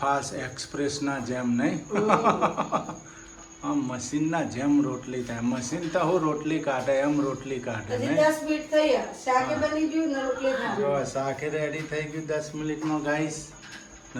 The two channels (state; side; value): identical; both; correlation 1.00